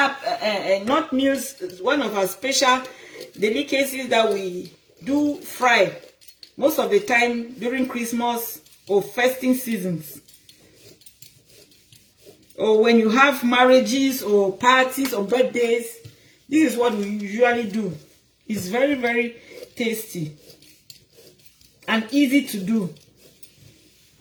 not meals, one of our special delicacies that we do fry most of the time during Christmas or festive seasons. Or when you have marriages or parties or birthdays, this is what we usually do. It's very, very tasty and easy to do.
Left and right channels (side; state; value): both; identical; correlation 1.00